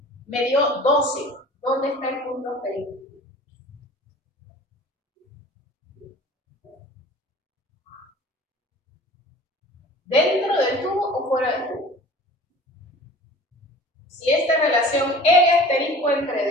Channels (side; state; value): both; normal; correlation 0.44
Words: me dio 12, ¿dónde está el punto asterisco? ¿Dentro del tubo o fuera del tubo? Si esta relación L asterisco entre